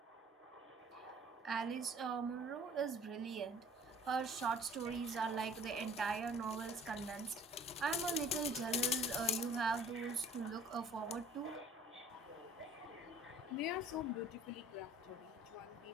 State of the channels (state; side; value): normal; both; correlation 0.51